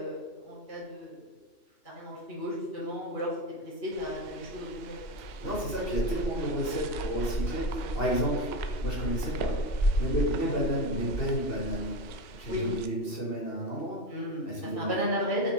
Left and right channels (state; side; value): late; right; 2.7 ms